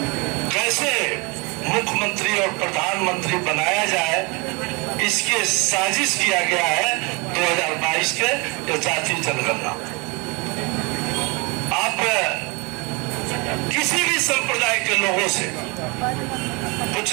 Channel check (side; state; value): left; quieter; 28.4 dB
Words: कैसे मुख्यमंत्री और प्रधानमंत्री बनाया जाए इसकी साजिश किया गया है 2022 के जातीय जनगणना। आप किसी भी संप्रदाय के लोगों से